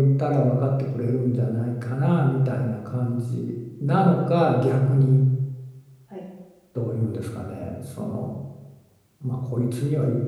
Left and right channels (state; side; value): identical; both; correlation 1.00